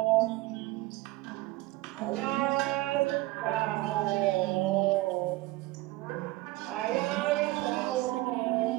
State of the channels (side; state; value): left; quieter; 19.2 dB